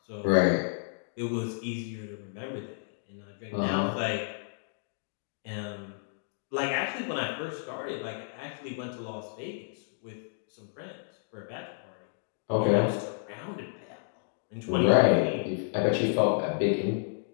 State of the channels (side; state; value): right; silent; digital silence